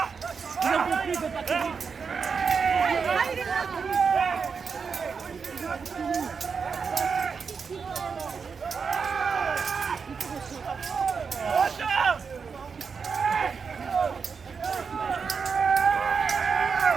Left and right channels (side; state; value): left; quieter; 5.7 dB